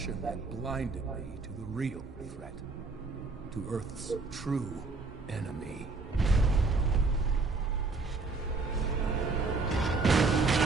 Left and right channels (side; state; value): left; quieter; 3.9 dB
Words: had blinded me to the real threat. To Earth's true enemy.